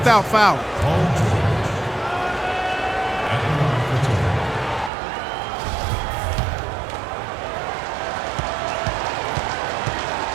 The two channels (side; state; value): left; drops out; at 4.9 s